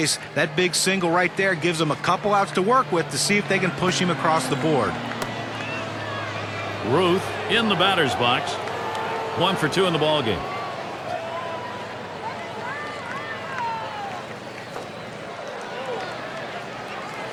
That big single right there gives them a couple outs to work with to see if they can push him across the board. Ruth in the batter's box. 1 for 2 in the ball game.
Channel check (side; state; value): both; identical; correlation 1.00